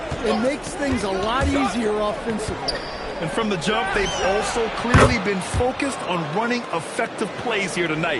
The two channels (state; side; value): identical; both; correlation 1.00